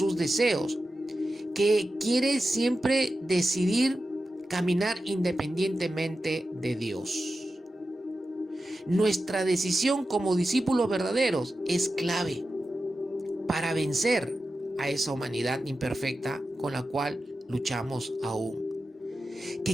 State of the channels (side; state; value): both; normal; correlation 0.92